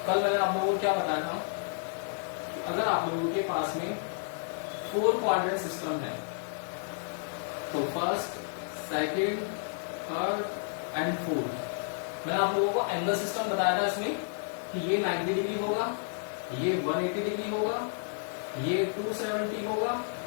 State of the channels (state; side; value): silent; right; digital silence